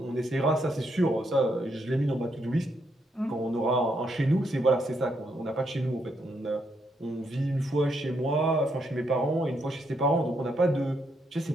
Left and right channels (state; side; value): normal; both; correlation 0.77